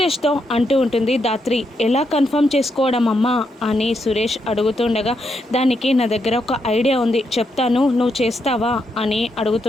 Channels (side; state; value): both; normal; correlation 0.80